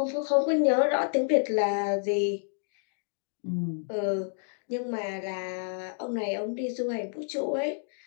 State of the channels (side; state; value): right; silent; digital silence